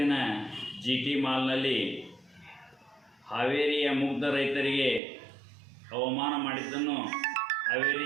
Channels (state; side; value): drops out; left; at 5.0 s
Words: GT ಮಾಲ್ನಲ್ಲಿ ಹಾವೇರಿಯ ಮುಗ್ಧ ರೈತರಿಗೆ ಅವಮಾನ ಮಾಡಿದ್ದನ್ನು